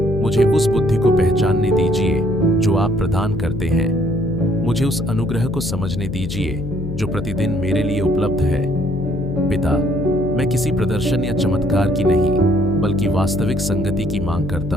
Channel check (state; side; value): noise; left; hum, 7 dB below the sound